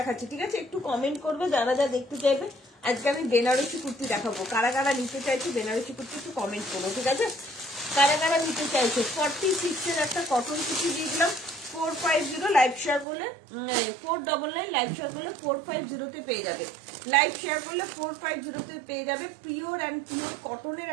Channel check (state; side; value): drops out; left; at 13.1 s